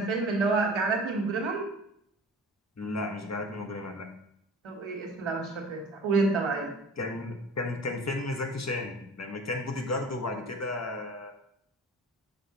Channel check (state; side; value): normal; both; correlation 0.42